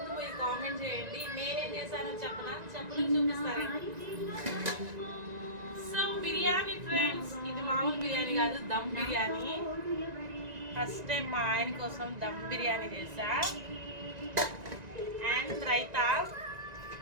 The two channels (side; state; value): left; late; 1.9 ms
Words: మీరు కామెంట్ చేయండి. నేనేం చేశానో చెప్పనా, చూపిస్తారండి. సో బిర్యానీ ఫ్రెండ్స్, ఇది మామూలు బిర్యానీ కాదు, దమ్ బిర్యానీ. ఫస్ట్ టైం మా ఆయన కోసం దమ్ బిర్యానీ చేశా. అండ్ రైతా,